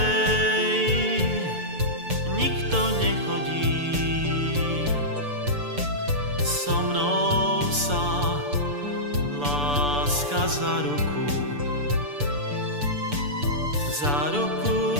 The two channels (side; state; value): left; late; 6.9 ms